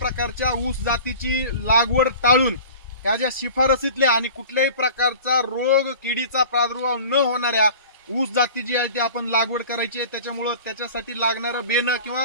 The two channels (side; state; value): both; inverted; correlation -0.41